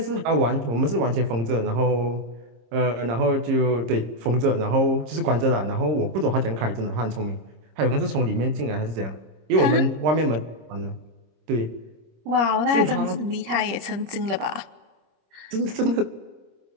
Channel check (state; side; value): late; left; 26 ms